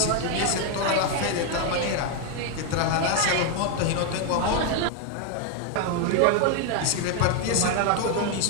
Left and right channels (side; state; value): both; different; correlation 0.01